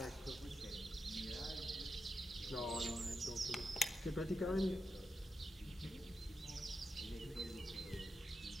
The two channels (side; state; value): both; normal; correlation 0.88